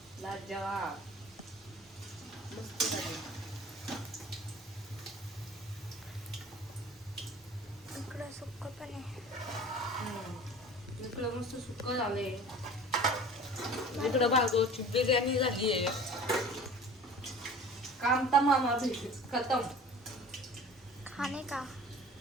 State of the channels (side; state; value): both; normal; correlation 0.42